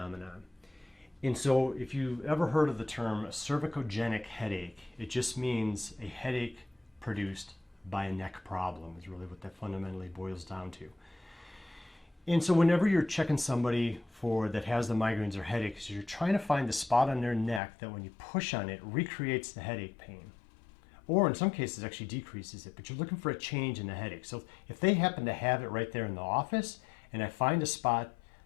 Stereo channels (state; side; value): drops out; right; at 17.6 s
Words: And so if you've ever heard of the term cervicogenic headache, it just means a headache produced by a neck problem is really what that fundamentally boils down to. And so whenever you're checking somebody that has the migraines or headaches, you're trying to find the spot on their neck that when you push on it recreates the headache pain. Or in some cases actually decreases it, but you're looking for a change in the headache. So if they happen to have it right there in the office and I find a spot